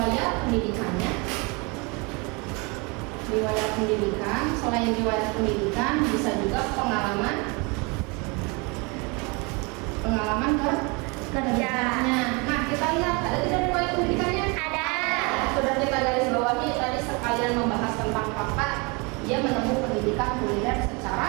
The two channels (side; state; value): left; quieter; 29.4 dB